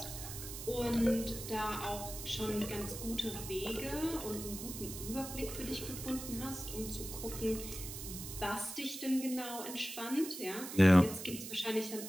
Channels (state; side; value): noise; right; hiss, 9 dB below the sound